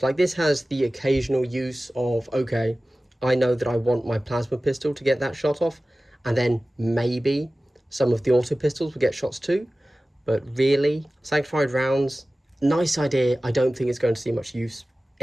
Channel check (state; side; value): normal; both; correlation 0.97